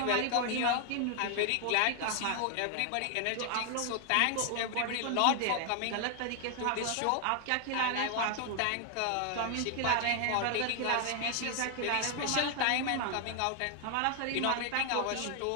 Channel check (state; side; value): different; both; correlation 0.00